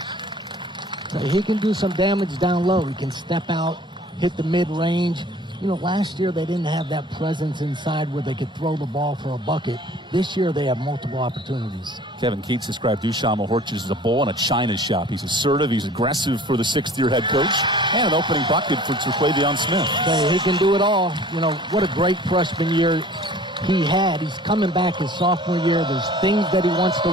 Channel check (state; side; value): normal; both; correlation 0.48